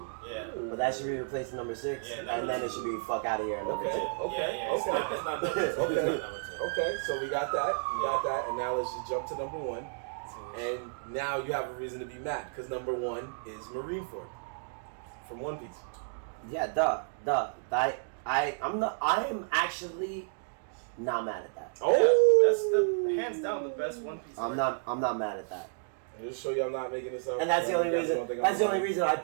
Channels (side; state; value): left; silent; digital silence